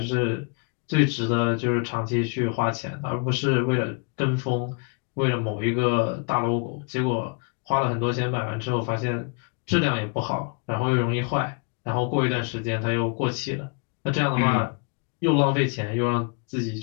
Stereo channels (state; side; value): quieter; right; 33.7 dB